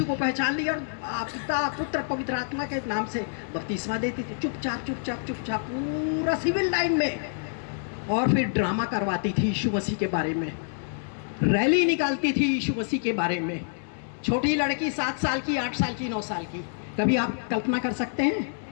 को पहचान लिया, और पिता पुत्र पवित्र आत्मा के नाम से बपतिस्मा देती थी, चुपचाप चुपचाप चुपचाप पूरा सिविल लाइन में। और फिर ड्रामा करवाती थी यीशु मसीह के बारे में, रैली निकालती थी यीशु मसीह के बारे में। छोटी लड़की 7 साल की, 8 साल की, 9 साल की, कभी आप कल्पना कर सकते हैं?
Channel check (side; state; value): right; silent; digital silence